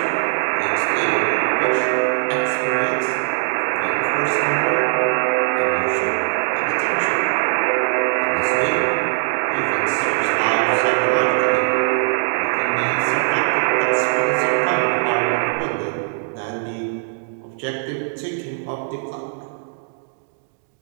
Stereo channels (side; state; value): left; silent; digital silence